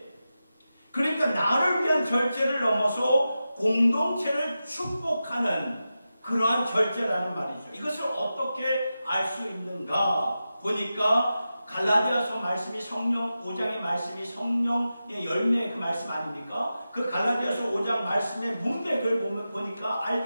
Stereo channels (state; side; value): inverted; both; correlation -0.92